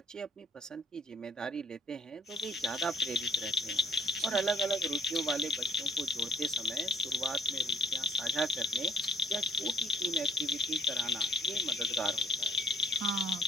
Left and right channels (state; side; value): normal; both; correlation 0.62